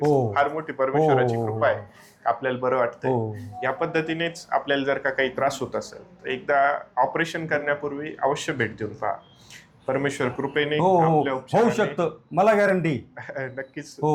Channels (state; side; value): identical; both; correlation 1.00